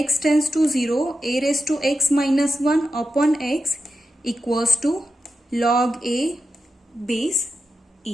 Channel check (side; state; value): both; normal; correlation 0.90